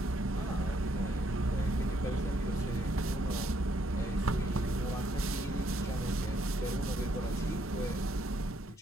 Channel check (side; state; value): both; normal; correlation 0.72